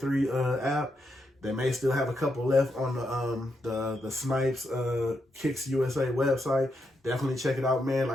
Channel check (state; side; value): normal; both; correlation 0.82